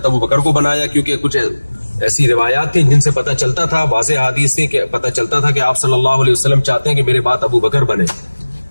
ابو بکر کو بنایا، کیونکہ کچھ ایسی روایات تھیں جن سے پتہ چلتا تھا، واضح حدیث تھیں کہ پتہ چلتا تھا کہ آپ صلی اللہ علیہ وسلم چاہتے ہیں کہ میرے بعد ابو بکر بنے،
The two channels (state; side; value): inverted; both; correlation -1.00